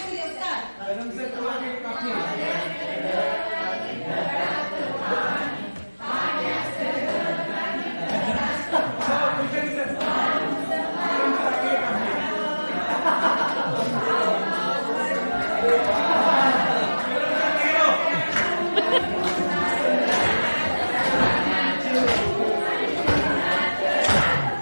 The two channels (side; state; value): both; inverted; correlation -1.00